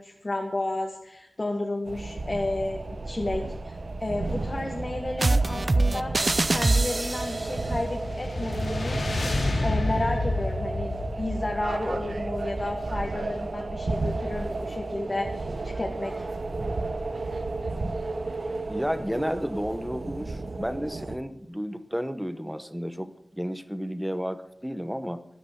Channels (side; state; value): both; normal; correlation 0.96